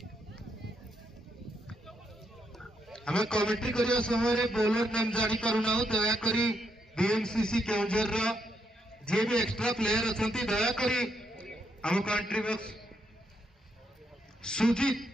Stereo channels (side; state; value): both; normal; correlation 0.78